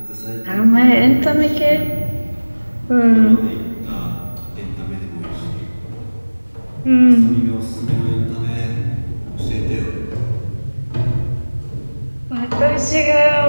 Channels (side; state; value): both; inverted; correlation -1.00